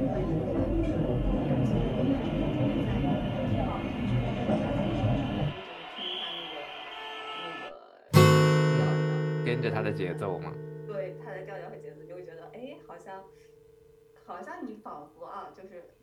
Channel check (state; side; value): identical; both; correlation 1.00